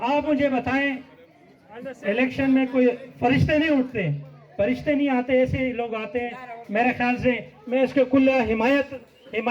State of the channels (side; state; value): both; identical; correlation 1.00